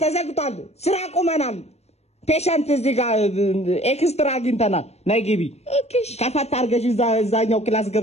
ተዘግቷል ስራ ቆመናል ፔሸንት እዚህ ጋር ኤክስትራ አግኝተናል ነይ ግቢ ከፈት አድርገሽ እዛኛው ክላስ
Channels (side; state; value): right; late; 0.31 ms